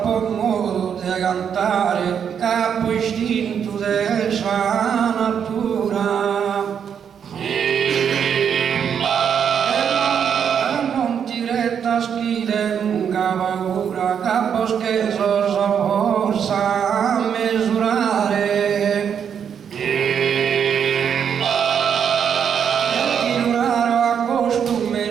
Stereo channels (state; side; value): quieter; left; 7.8 dB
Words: buon modo di cantare capo istinto della sua natura. Non ti retta schile lunga paura, capo scherzo forza a misurare. Ti duraro a costume